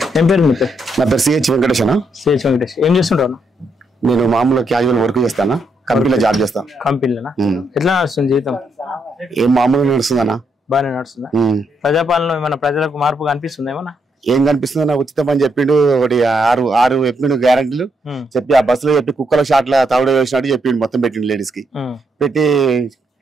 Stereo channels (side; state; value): both; normal; correlation 0.77